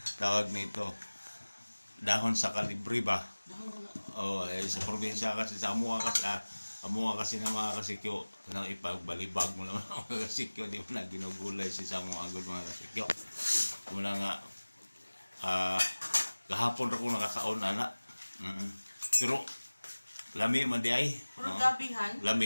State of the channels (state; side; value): inverted; both; correlation -1.00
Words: tawag nito, dahon sa kalibre ba? Sa probinsya kasi, sa Amuha kasi na mga kasikyo, nang ipagbalibag mo naman mga kasikyo, di mo na ginugulay si Samo Agod mga kasikyo. Mula nga, kahapon ako nakakaon ana. Pero, lami man di ay. Oragabihan?